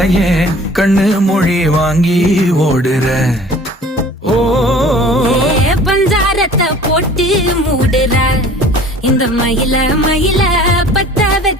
கண்ணு மொழி வாங்கி ஓடுற. ஓ பஞ்சாரத்தை போட்டு மூடுற இந்த மயில மயில பத்த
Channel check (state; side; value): normal; both; correlation 0.48